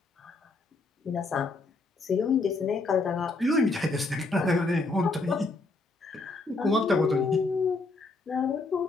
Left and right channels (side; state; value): right; quieter; 3.5 dB